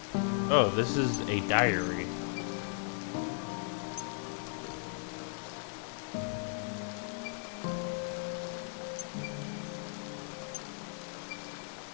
Oh, this is a diary.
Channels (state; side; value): silent; right; 54 dB below the other